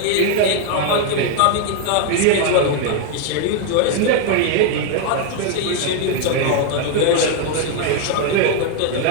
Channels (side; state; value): both; different; correlation 0.01